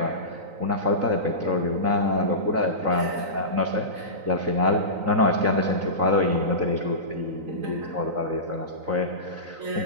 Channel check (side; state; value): left; late; 3.9 ms